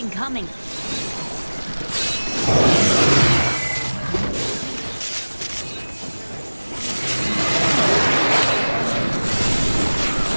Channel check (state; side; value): inverted; both; correlation -1.00